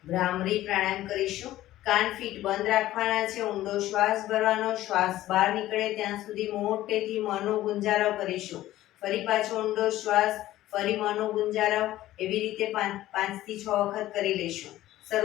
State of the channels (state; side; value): quieter; right; 14.9 dB